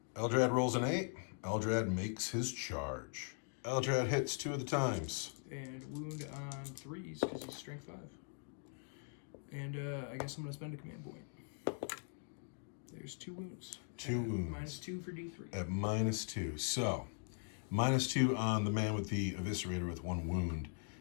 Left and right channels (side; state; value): right; silent; 51 dB below the other